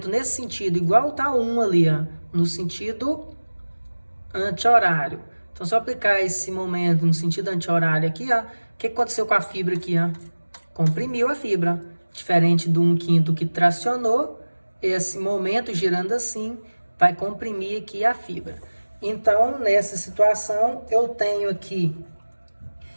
nesse sentido, igual está 1 ali, ó, no sentido anti-horário. Então, se eu aplicar esse momento no sentido anti-horário aqui, ó, o que aconteceu com a fibra aqui? Ó? Comprimiu a fibra. Diferente do 1/5 que tracionou, esse momento girando assim vai comprimir aqui a fibra. Então, nessa situação, eu tenho aqui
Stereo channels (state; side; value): inverted; both; correlation -1.00